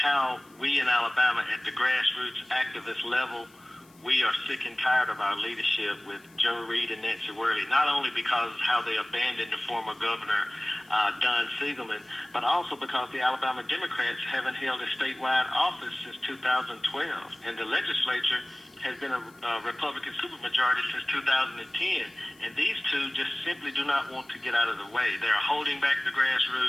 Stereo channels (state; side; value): noise; left; hiss, 29 dB below the sound